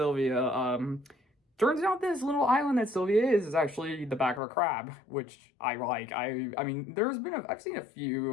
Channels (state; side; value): drops out; right; at 4.4 s